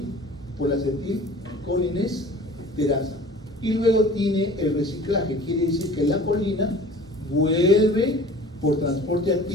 Por la acetilcolinesterasa. Y luego tiene el reciclaje, quiere decir que la colina vuelve por transporte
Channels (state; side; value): normal; both; correlation 0.45